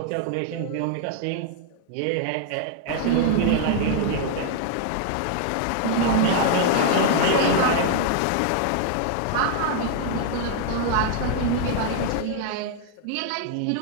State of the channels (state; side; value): different; both; correlation 0.00